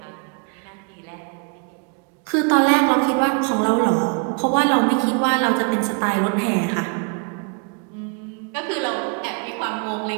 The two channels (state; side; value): quieter; left; 36.5 dB